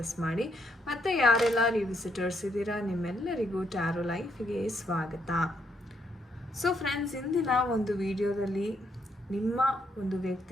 ಮಾಡಿ. ಮತ್ತು ಯಾರೆಲ್ಲ ನೀವು ವಿಸಿಟರ್ಸ್ ಇದ್ದೀರಾ, ನಿಮ್ಮೆಲ್ಲರಿಗೂ ಟ್ಯಾರೋ ಲೈಫಿಗೆ ಸ್ವಾಗತ. ಸೊ ಫ್ರೆಂಡ್ಸ್, ಇಂದಿನ ಒಂದು ವಿಡಿಯೋದಲ್ಲಿ ನಿಮ್ಮ ಒಂದು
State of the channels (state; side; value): normal; both; correlation 0.75